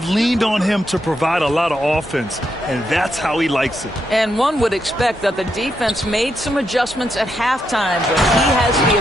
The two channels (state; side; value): normal; both; correlation 0.81